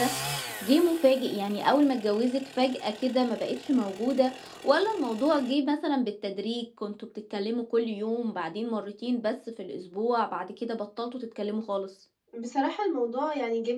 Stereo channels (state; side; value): identical; both; correlation 1.00